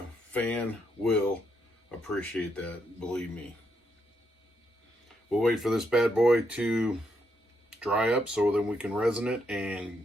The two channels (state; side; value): normal; both; correlation 0.78